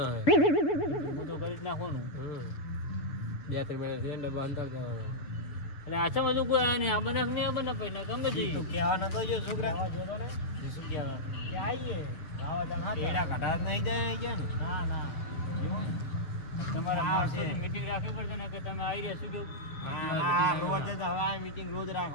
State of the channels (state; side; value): late; right; 6.8 ms